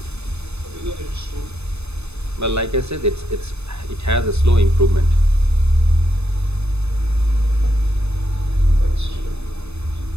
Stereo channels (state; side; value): late; left; 0.80 ms